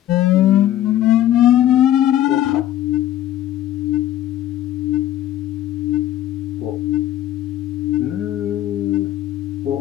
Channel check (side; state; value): right; quieter; 12.6 dB